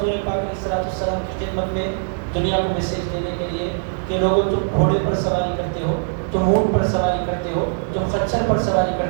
پاک علیہ السلام کی خدمت میں؟ دنیا کو میسیج دینے کے لیے کہ لوگوں تم گھوڑے پر سواری کرتے ہو، تم اونٹ پر سواری کرتے ہو، تم خچر پر سواری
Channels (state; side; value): silent; left; digital silence